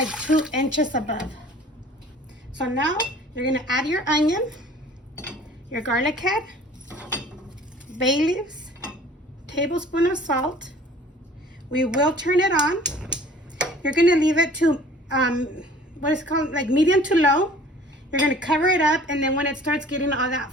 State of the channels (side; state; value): both; normal; correlation 0.50